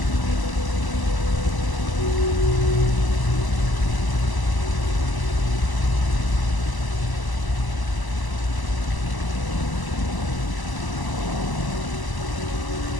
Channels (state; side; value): late; right; 1.0 ms